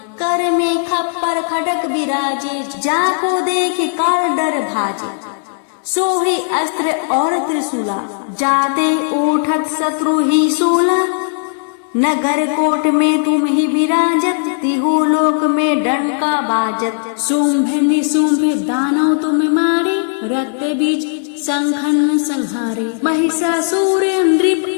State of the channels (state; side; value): silent; right; digital silence